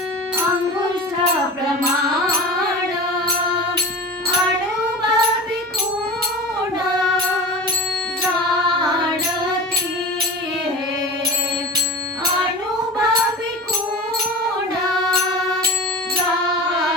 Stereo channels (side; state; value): both; normal; correlation 0.33